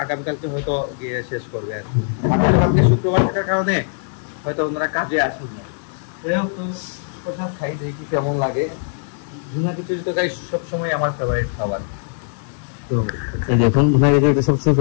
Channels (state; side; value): silent; right; digital silence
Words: আগামীকালকে হয়তো গিয়ে শেষ করবে আর কালকে শুক্রবার থাকার কারণে হয়তো ওনারা কাজে আসুন না তো প্রসাদ খাই দেখি কেমন লাগে ভুনা খিচুড়ি তো গাইস সবসময় আমার ফেভারিট খাবার তো এই দেখুন ভুনা খিচুড়ি সবসময়